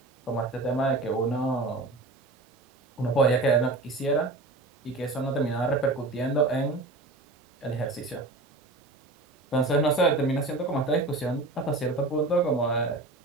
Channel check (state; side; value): quieter; left; 3.0 dB